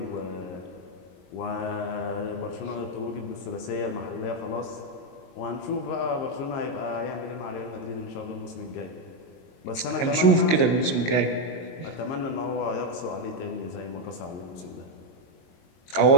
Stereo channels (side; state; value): right; late; 22 ms